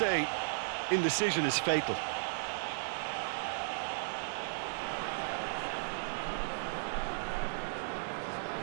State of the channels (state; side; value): silent; left; digital silence